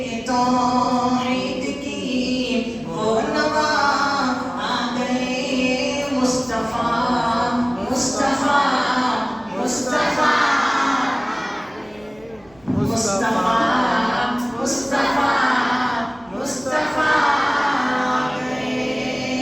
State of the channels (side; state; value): right; noise; rumble, 29 dB below the sound